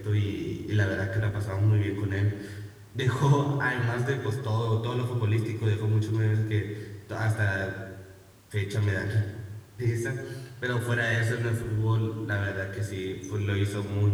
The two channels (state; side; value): identical; both; correlation 1.00